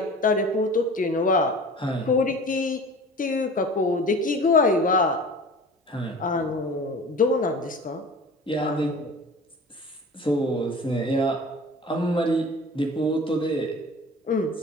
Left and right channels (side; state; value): both; normal; correlation 0.40